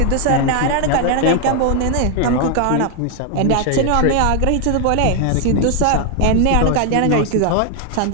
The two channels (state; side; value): different; both; correlation 0.00